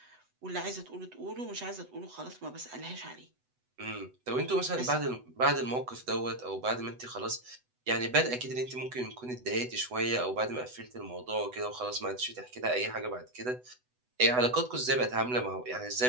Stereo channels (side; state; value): left; late; 8.0 ms